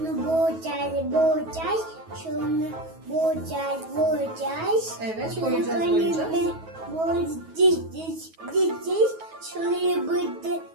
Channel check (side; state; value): left; late; 9.3 ms